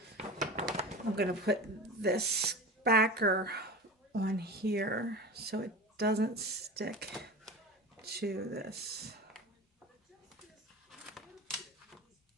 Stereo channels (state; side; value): normal; both; correlation 0.31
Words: I'm going to put this backer on here so it doesn't stick to this.